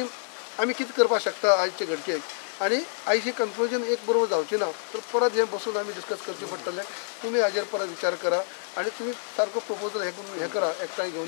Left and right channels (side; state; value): right; silent; digital silence